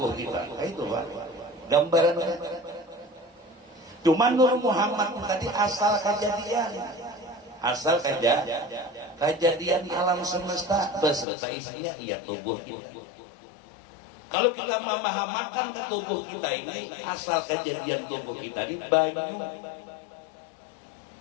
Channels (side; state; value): right; drops out; at 11.2 s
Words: kita. Kayak itu Pak. Gambaran. Cuma Nur Muhammad tadi asal kejadian. Asal kejadian alam semesta beserta isinya iya tubuh kita. Kalau kita memahamakan ke tubuh kita ini, asal kejadian tubuh kita ini banyu